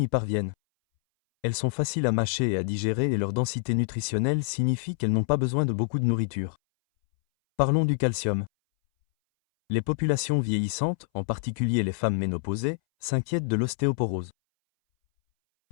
y parviennent. Elles sont faciles à mâcher et à digérer et leur densité nutritionnelle signifie qu'elles n'ont pas besoin de beaucoup de nourriture. Parlons du calcium. Les populations vieillissantes, en particulier les femmes ménopausées, s'inquiètent de l'ostéoporose.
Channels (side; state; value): right; silent; 60 dB below the other